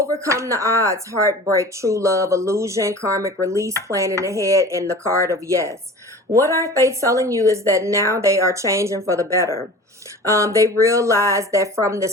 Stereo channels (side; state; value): both; normal; correlation 0.40